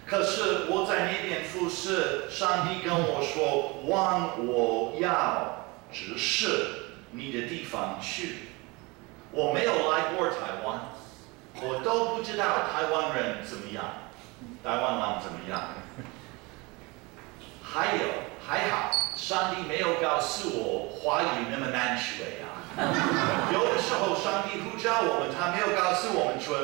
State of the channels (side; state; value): left; quieter; 25.6 dB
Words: 可是我在那边服侍，上帝跟我说，往我要指示你的地方去。我没有来过台湾，我都不知道台湾人怎么样，台湾人怎么样。还好，上帝没有告诉我华语那么难学啊。有的时候上帝呼召我们，他没有告诉我们